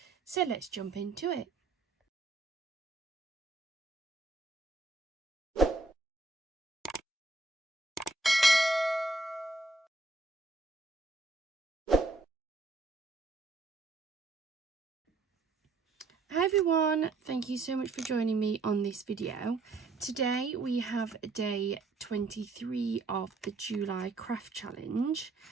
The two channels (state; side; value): quieter; left; 3.4 dB